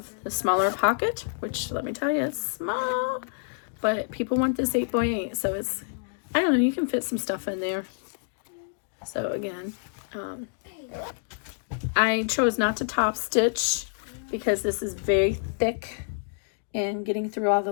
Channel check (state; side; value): silent; right; digital silence